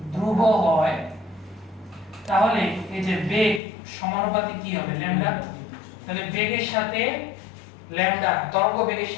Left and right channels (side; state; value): right; drops out; at 3.6 s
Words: ধ্রুব হয়, তাহলে এই যে বেগ সমানুপাতিক কি হবে? ল্যামডা। তাহলে বেগের সাথে ল্যামডা, তরঙ্গ বেগের